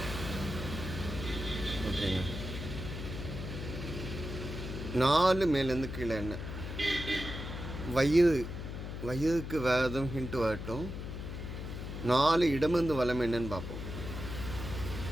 ஓகேங்க. 4 மேலேருந்து கீழே என்ன வயிறு. வயிறுக்கு வேறு எதுவும் ஹிண்ட் வரட்டும். 4 இடமிருந்து வலம் என்னன்னு பார்ப்போம்.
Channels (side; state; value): left; noise; hum, 7 dB below the sound